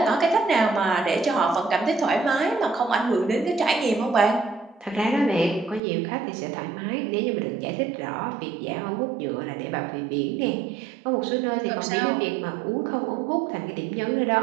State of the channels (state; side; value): drops out; left; at 5.8 s